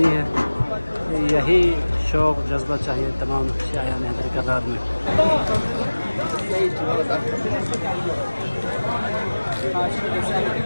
ہے، یہی شوق جذبہ چاہیے تمام شایان حیدر کرار میں۔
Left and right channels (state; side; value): inverted; both; correlation -1.00